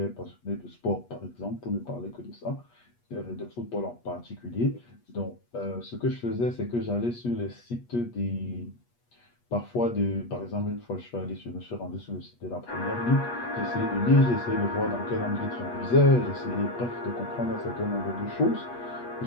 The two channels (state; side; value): late; right; 8.3 ms